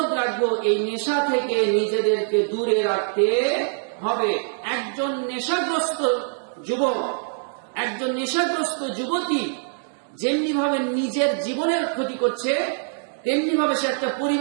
রাখবো এই নেশা থেকে নিজেদেরকে দূরে রাখতে হবে। একজন নেশাগ্রস্ত যুবক, একজন নেশাগ্রস্ত যুবতী যেমনি ভাবে নিজের জীবনের ক্ষতি করছে, তেমনি ভাবে সে একটা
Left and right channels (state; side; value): silent; left; digital silence